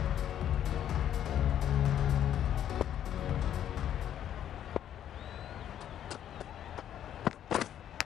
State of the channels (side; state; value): right; quieter; 10.5 dB